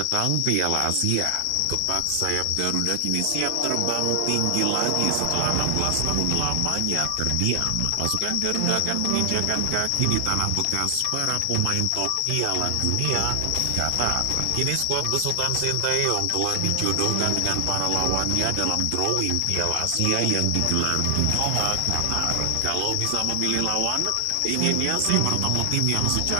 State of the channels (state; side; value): different; both; correlation 0.00